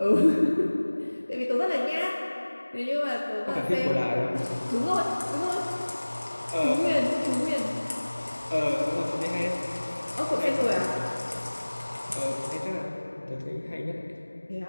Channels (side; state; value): both; inverted; correlation -1.00